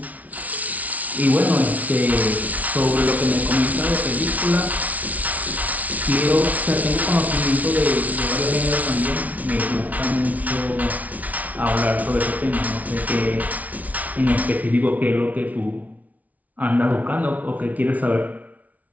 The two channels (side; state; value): left; late; 0.072 ms